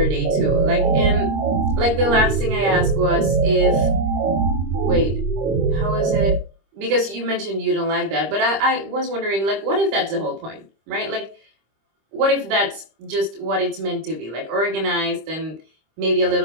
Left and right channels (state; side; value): late; left; 25 ms